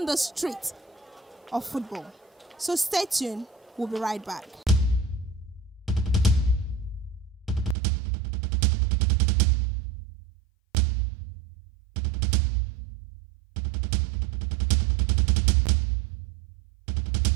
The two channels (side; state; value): left; drops out; at 7.8 s